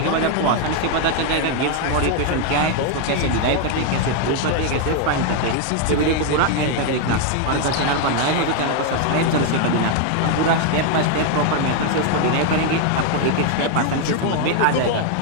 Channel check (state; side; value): different; both; correlation 0.01